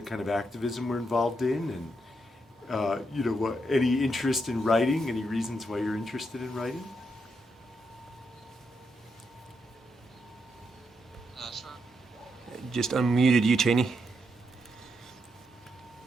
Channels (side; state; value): both; normal; correlation 0.81